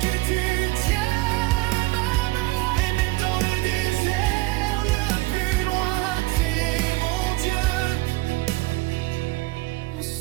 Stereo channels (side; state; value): left; quieter; 21.0 dB